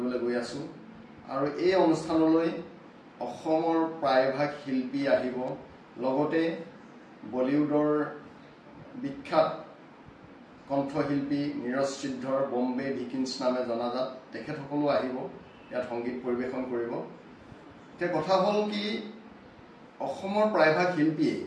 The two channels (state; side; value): identical; both; correlation 1.00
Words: গৈ আছোঁ আৰু এই অনুষ্ঠানলৈ অসমৰ প্ৰায়ভাগ শিল্পী আহিব। লগতে বলিউডৰ বিখ্যাত কণ্ঠশিল্পী নীৰজ সিদ্ধৰ বম্বে ভিকিন্স নামে জনাজাত তেখেতসকলো আহিব, ইয়াত সংগীত পৰিৱেশন কৰিব। এতিয়া কথা হ'ল কি, অসমৰ প্ৰায়ভাগ শিল্পীয়ে